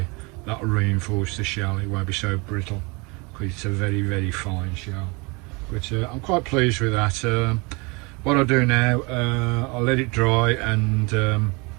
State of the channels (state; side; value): quieter; left; 28.4 dB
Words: that'll reinforce the shell. It won't be so brittle because it's a very, very fine shell. But I'm quite pleased with that. What I'll do now, I'll let it dry and